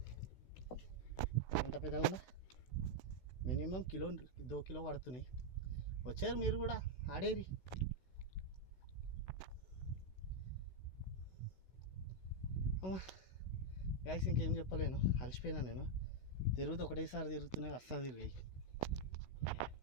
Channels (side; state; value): right; late; 16 ms